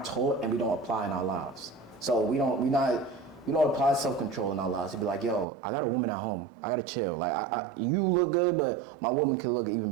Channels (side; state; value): left; drops out; at 5.5 s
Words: taught and we don't apply in our lives. So we don't apply self-control in our lives. To be like, yo, I got a woman at home. I gotta chill. Like, you look good, but my woman can look